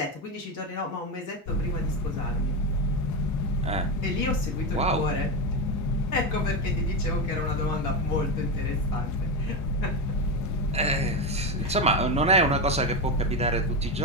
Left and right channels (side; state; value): both; normal; correlation 0.13